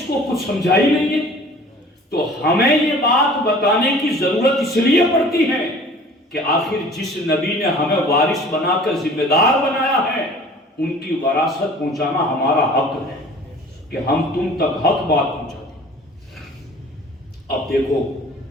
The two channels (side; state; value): both; normal; correlation 0.47